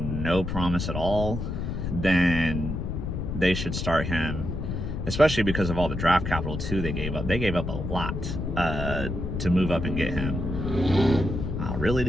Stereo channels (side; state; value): left; noise; rumble, 4 dB below the sound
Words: no promise at all, then they should start him, especially because of all the draft capital too they gave up. They gave up a lot to move up and get him. Oh, really,